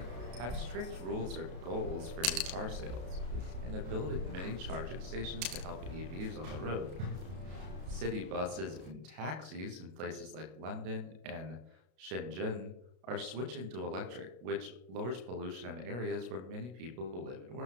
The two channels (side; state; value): left; late; 32 ms